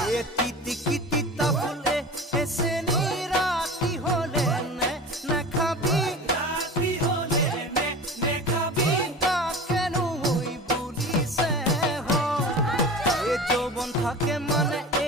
এ তিতি ফুলে এসে রাতি হলে নে খাবি রাতি হলে নে খাবি তা কেন হই বলিছে এ যৌবন থাকে মানে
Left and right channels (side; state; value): both; normal; correlation 0.34